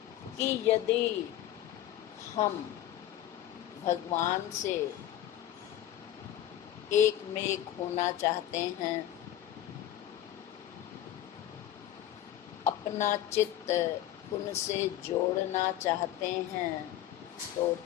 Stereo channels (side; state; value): right; quieter; 12.5 dB